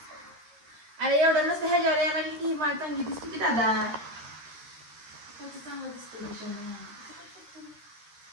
अरे एवढं नसतं, ह्याच्यावर यायला लागली की ही माळ चांगली दिसते की दादा, त्याचं चांगलं दिसतं.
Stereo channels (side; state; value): left; late; 13 ms